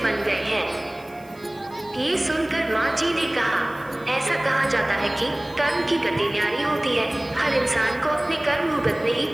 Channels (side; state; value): right; noise; hiss, 27 dB below the sound